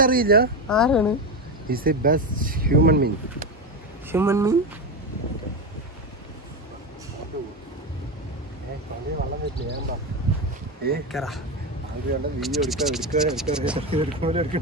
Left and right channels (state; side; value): normal; both; correlation 0.16